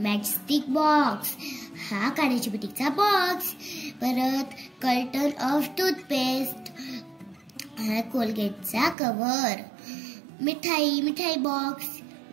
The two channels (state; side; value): drops out; left; at 9.0 s